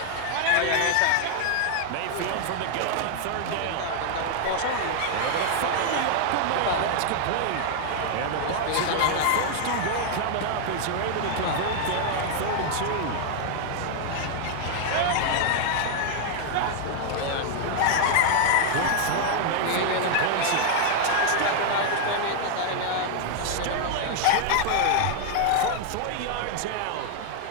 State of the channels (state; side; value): different; both; correlation 0.00